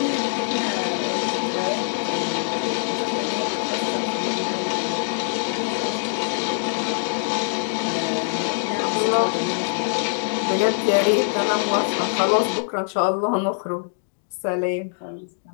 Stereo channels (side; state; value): right; silent; digital silence